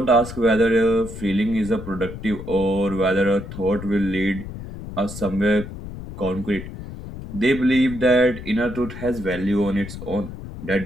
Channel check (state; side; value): noise; left; rumble, 11 dB below the sound